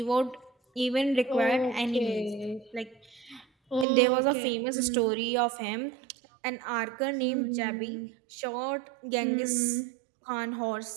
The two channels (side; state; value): left; drops out; at 3.9 s